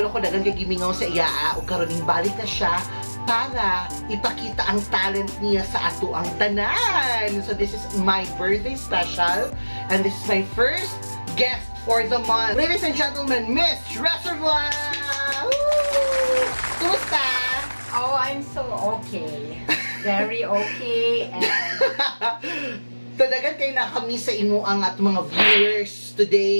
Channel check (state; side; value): inverted; both; correlation -1.00